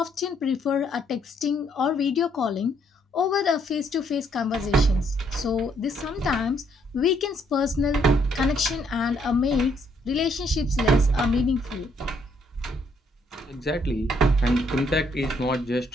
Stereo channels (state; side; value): normal; both; correlation 0.70